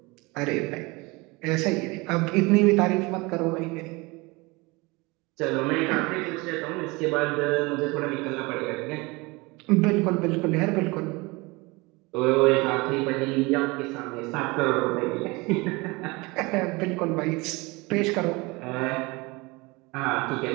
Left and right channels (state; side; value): quieter; left; 24.6 dB